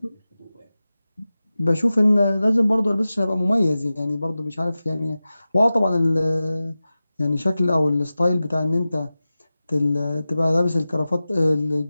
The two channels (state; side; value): inverted; both; correlation -0.95